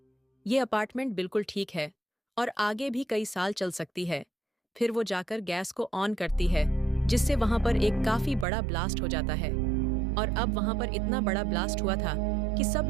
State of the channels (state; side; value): drops out; left; at 8.5 s